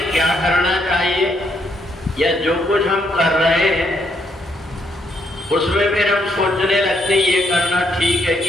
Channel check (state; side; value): normal; both; correlation 0.74